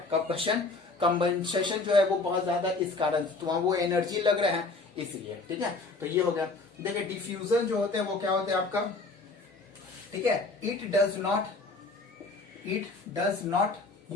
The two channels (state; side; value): quieter; right; 3.6 dB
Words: कंबंसेशन जो है वो बहुत ज्यादा, इस कारण तो वहां वो एनर्जी लग रहे हैं इसलिए, ठीक है। तो ये हो गया। देखिए डिफ्यूजन जो होते हैं वो क्या होते हैं आपका, ठीक है, it does not